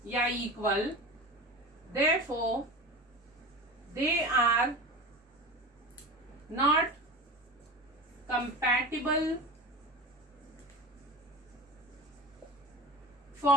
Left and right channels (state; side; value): normal; both; correlation 0.31